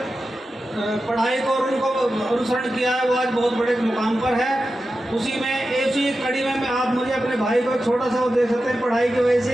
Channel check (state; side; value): normal; both; correlation 0.92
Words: पढ़ाई को और उनको अनुसरण किया है, वो आज बहुत बड़े मुकाम पर है। उसी में ऐसी कड़ी में आप मुझे अपने भाई को छोटा सा वो दे सकते हैं। पढ़ाई की वजह